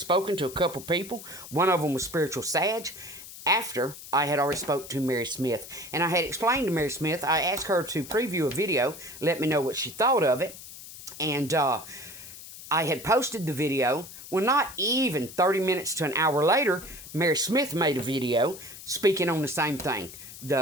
to a couple people. One of them was Spiritual Sag. After I had already spoke to Mary Smith. And I had explained to Mary Smith, I asked her to preview a video, let me know what she thought of it. And I had posted the video. Well, not even 30 minutes to an hour later, Mary Smith made a video speaking on the same thing,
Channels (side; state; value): left; noise; hiss, 14 dB below the sound